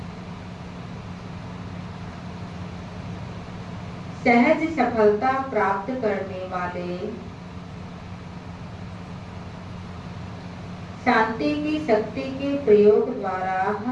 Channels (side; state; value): both; identical; correlation 1.00